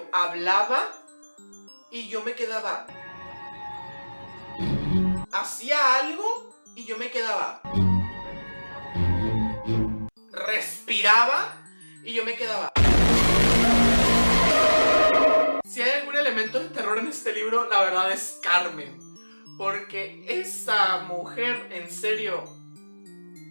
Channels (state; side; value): inverted; both; correlation -1.00